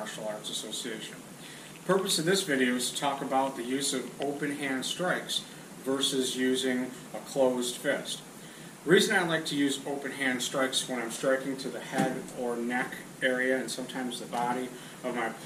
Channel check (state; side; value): identical; both; correlation 1.00